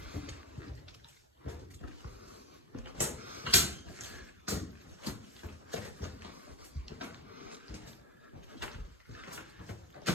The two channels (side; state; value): both; normal; correlation 0.14